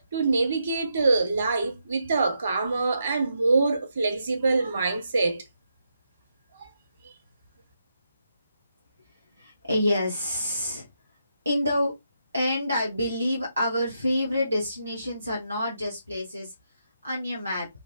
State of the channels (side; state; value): both; inverted; correlation -0.82